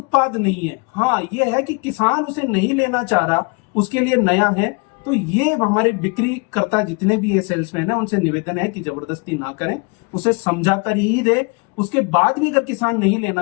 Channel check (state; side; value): quieter; right; 32.0 dB